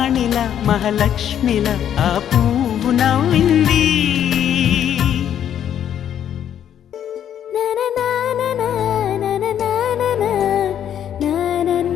మహాలక్ష్మిలా ఆ పువ్వు నవ్వింది.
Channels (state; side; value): quieter; right; 9.8 dB